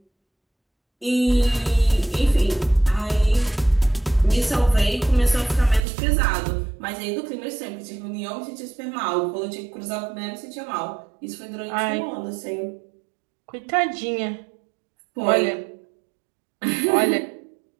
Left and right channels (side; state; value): left; drops out; at 5.9 s